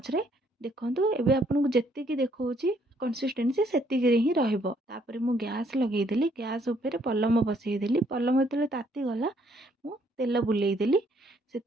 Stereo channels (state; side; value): normal; both; correlation 0.67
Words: रे। देखो एबे आपन को जेतिकी देखौची कंसिस्टेंसी सेतिकी रे ही रहिबो। तापर मु गैस लगेदेली। गैस ऊपर पलम बसई देली। पलम जेतले ताती गला मु तेल बुलेई देली।